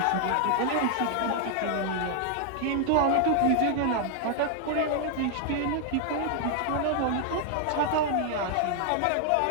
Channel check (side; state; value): both; different; correlation 0.00